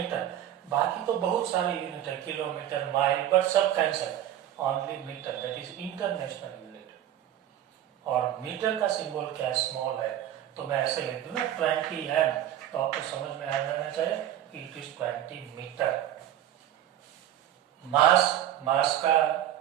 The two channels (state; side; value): quieter; left; 11.7 dB